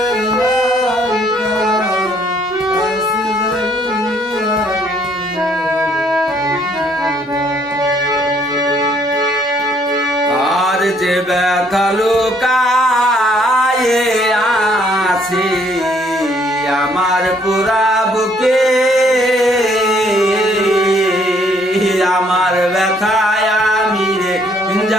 আর যে ব্যথা লুকায়ে আছে আমার পুরা বুকে আমার ব্যথায় আমি রে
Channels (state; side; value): normal; both; correlation 0.66